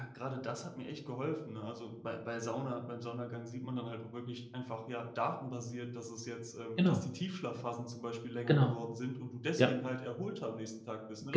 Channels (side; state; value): both; identical; correlation 1.00